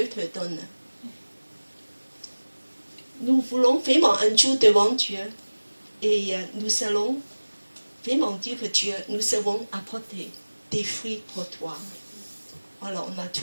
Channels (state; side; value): inverted; both; correlation -1.00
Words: te donne? Nous voulons vraiment un jour devant Dieu et nous allons vraiment dire que Dieu, nous avons apporté des fruits pour toi. Voilà, on a